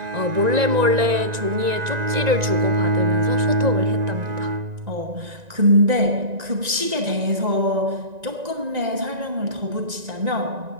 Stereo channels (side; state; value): left; late; 1.9 ms